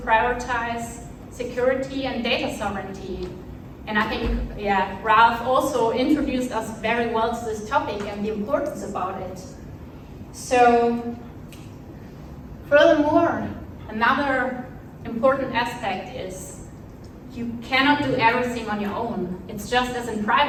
prioritize security and data sovereignty. And I think, Ralph also introduced us very well to this topic and the importance about it. So, furthermore, another important aspect is you cannot do everything on your own. It's just as in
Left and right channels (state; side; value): identical; both; correlation 1.00